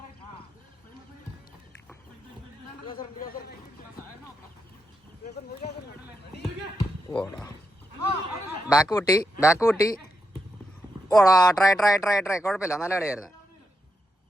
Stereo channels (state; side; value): normal; both; correlation 0.85